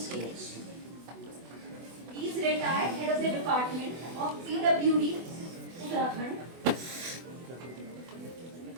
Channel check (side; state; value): left; late; 24 ms